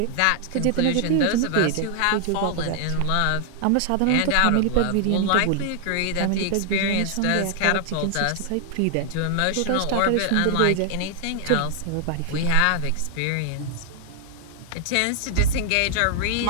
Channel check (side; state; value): both; different; correlation 0.00